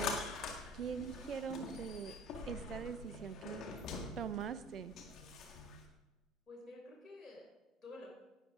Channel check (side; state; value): both; normal; correlation 0.44